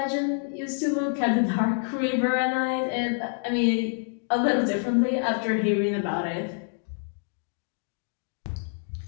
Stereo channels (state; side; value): silent; right; digital silence